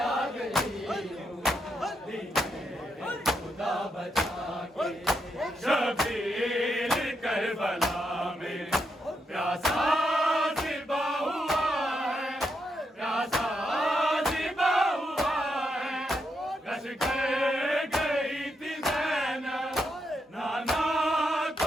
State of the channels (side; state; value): both; normal; correlation 0.82